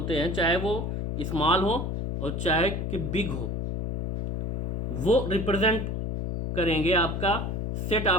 हैं चाहे वो स्मॉल हो और चाहे कि बिग हो, वो रिप्रेजेंट करेंगे आपका सेट।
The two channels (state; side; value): noise; left; hum, 2 dB below the sound